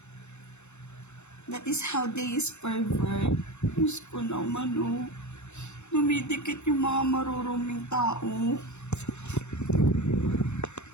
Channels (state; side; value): late; right; 0.82 ms